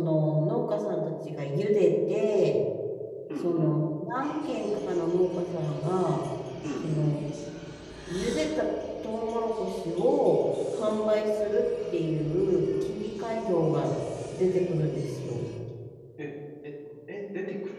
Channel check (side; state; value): both; identical; correlation 1.00